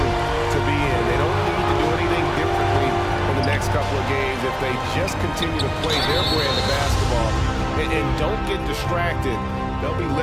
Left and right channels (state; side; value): identical; both; correlation 1.00